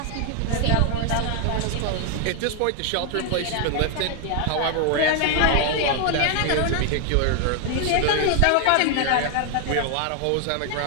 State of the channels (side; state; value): both; different; correlation 0.00